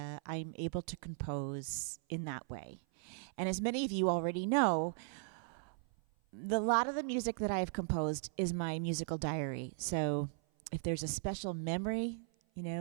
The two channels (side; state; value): left; silent; 53 dB below the other